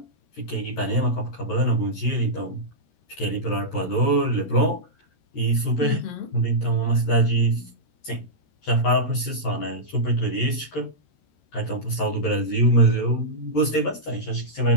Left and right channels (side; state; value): right; late; 13 ms